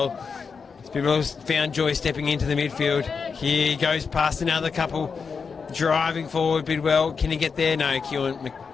Bidwell's found joy stepping into the midfield. Here he goes past another couple, driving forward. Bidwell, can he get there? No,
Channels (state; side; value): quieter; right; 5.5 dB